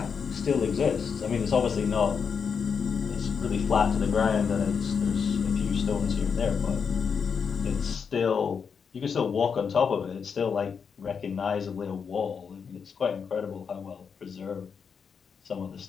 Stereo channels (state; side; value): quieter; right; 6.3 dB